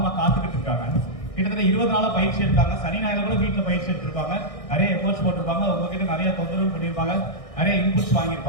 காத்துக்கிட்டு இருக்காங்க. கிட்டத்தட்ட 20 நாளா பயிற்சி எடுத்தாங்க. சனி ஞாயிறு கூட வீட்டுல பயிற்சி எடுத்திருப்பாங்க. நிறைய எஃபோர்ட்ஸ் போட்டிருப்பாங்க. உங்ககிட்ட நிறைய தொந்தரவு பண்ணியிருப்பாங்க, நிறைய இன்புட்ஸ்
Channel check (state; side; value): late; right; 1.6 ms